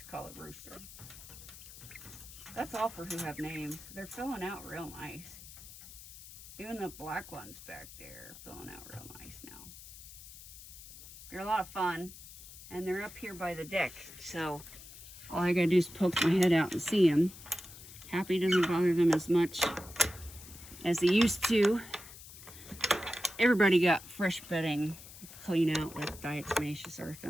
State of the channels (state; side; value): noise; left; hiss, 16 dB below the sound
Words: call it Rooster. That's all for who have names. They're filling out real nice. Even the black ones back there are filling out real nice now. They're a lot of fun, and they're up here by the deck, so all I gotta do is poke my head out and see them. Happy doesn't bother them as much as they used to. Everybody got fresh bedding clean out with diatomaceous earth